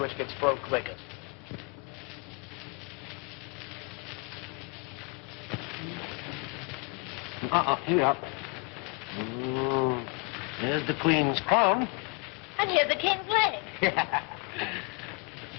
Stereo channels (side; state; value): right; quieter; 33.3 dB